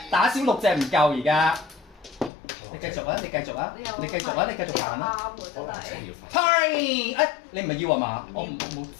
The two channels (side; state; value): right; drops out; at 2.3 s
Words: 打少6隻唔夠而家。你繼續啊！你繼續啊！你繼續啊！你繼續行啦！啱喎真係。 Party！哎，你唔係要啊嘛？我冇